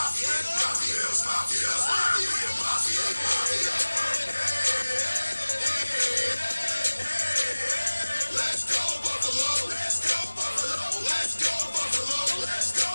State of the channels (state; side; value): inverted; both; correlation -1.00